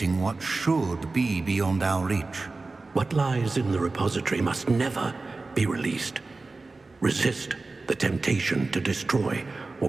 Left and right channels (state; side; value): quieter; left; 3.6 dB